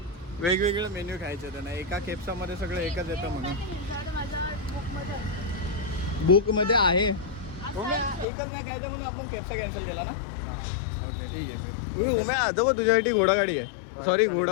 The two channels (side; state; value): right; drops out; at 8.2 s